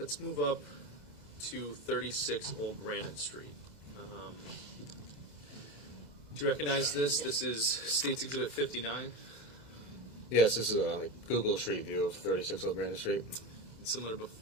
move up to 36 Old Brandon Street. Do you recognize this? This is State's Exhibit 59. Yes, this is a Google Street view of 36 Old Brandon Street. Similar to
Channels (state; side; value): late; left; 2.0 ms